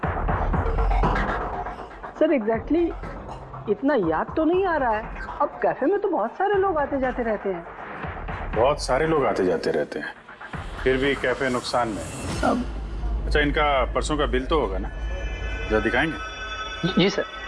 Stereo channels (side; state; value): both; identical; correlation 1.00